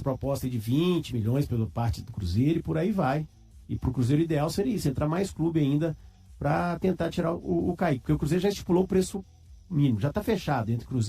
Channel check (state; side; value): identical; both; correlation 1.00